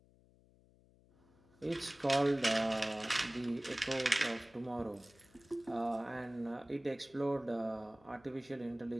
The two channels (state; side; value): noise; left; hum, 28 dB below the sound